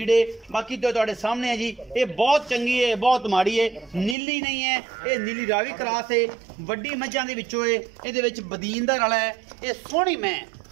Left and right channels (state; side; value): drops out; left; at 4.2 s